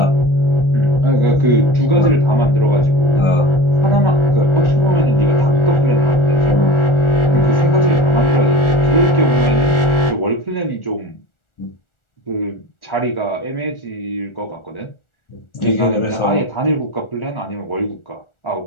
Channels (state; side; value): late; right; 1.4 ms